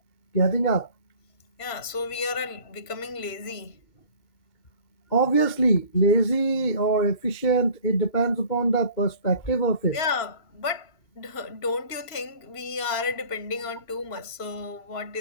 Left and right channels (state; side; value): late; right; 3.0 ms